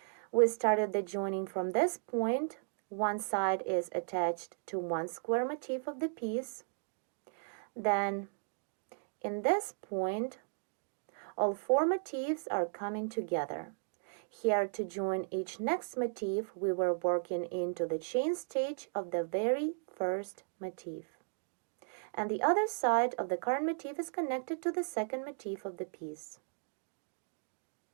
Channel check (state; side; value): silent; left; digital silence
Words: We started the joining from this point. One side is attached to one square motif of the piece. Then in this point, all four motifs are coming together. Here to join each next motif, we were working into the chain stitch of the very first motif. And the other side of the current motif is connected to the second motif of the piece.